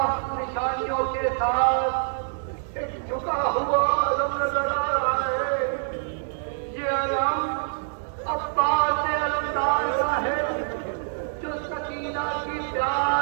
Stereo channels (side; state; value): left; silent; digital silence